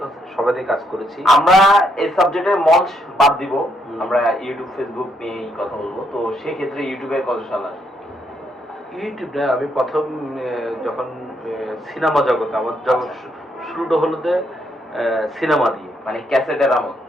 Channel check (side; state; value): both; normal; correlation 0.74